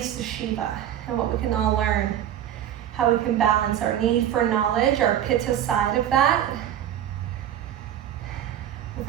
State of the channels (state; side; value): quieter; left; 10.9 dB